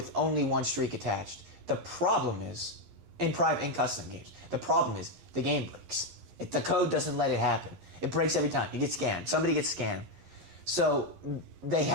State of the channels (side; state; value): left; late; 11 ms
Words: only 1 streak attached. The problem is, in custom games, the problem is the game breaks. The code doesn't let it happen. It breaks every time. You get scanned. Somebody gets scanned. So they